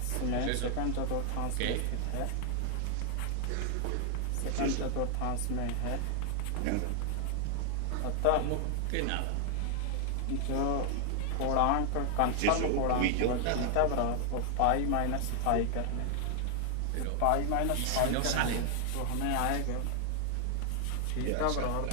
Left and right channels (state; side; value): different; both; correlation 0.00